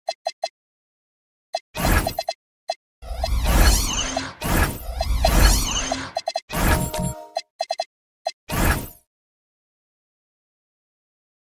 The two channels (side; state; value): both; identical; correlation 1.00